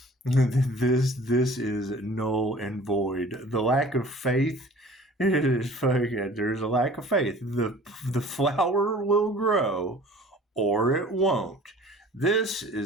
This is null and void. The lack of faith is fucking. There's a lack of faith. The flower will grow, or it won't. This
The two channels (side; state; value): both; normal; correlation 0.47